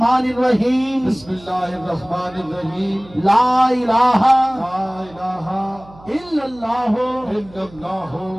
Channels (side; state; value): right; noise; hum, 23 dB below the sound